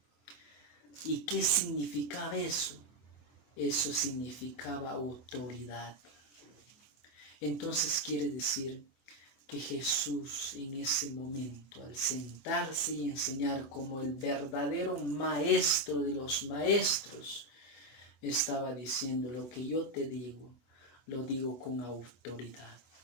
¿Y qué significaba eso? Eso significaba autoridad. Entonces quiere decir que Jesús en ese momento, al sentarse y enseñar como el verdadero maestro de los maestros, estaba diciendo: lo que yo te digo, lo digo con autoridad.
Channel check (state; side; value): late; right; 23 ms